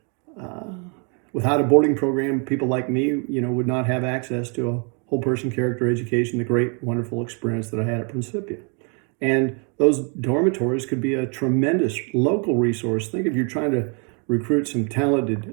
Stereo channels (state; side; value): quieter; left; 36.8 dB